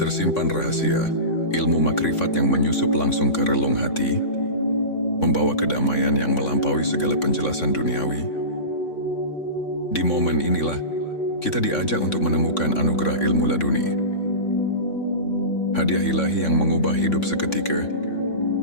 rahasia ilmu makrifat yang menyusup langsung ke relung hati, membawa kedamaian yang melampaui segala penjelasan duniawi. Di momen inilah kita diajak untuk menemukan anugerah ilmu laduni, hadiah ilahi yang mengubah hidup seketika.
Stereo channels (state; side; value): late; right; 3.6 ms